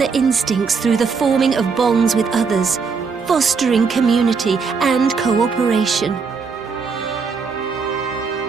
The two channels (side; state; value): left; quieter; 5.3 dB